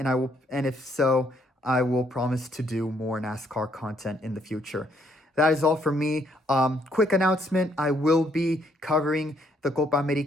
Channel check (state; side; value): normal; both; correlation 0.70